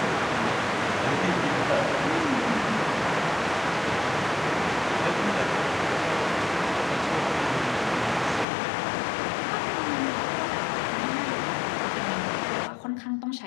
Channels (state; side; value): drops out; right; at 8.5 s